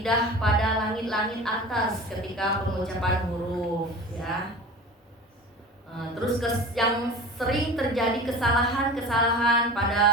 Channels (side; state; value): both; normal; correlation 0.36